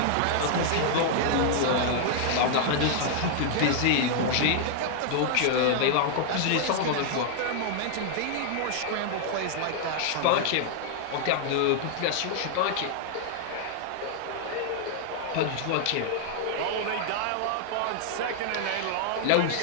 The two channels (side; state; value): both; different; correlation -0.01